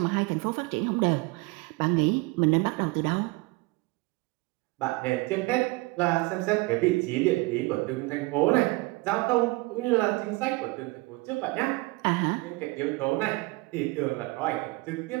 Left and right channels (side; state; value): left; quieter; 23.9 dB